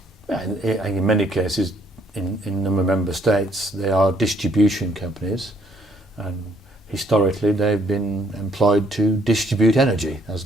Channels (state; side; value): normal; both; correlation 0.66